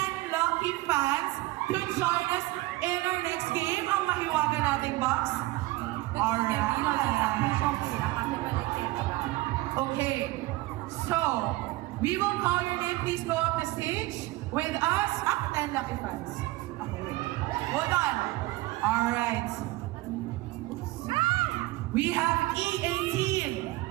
lucky fans to join us in our next game. Ang mahiwaga nating box. Alright. Okay. So, we will call your name. Please go up the stage with us. 10 lucky fans. Okay. Hold on. Alright. We have E18.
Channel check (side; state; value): left; quieter; 19.4 dB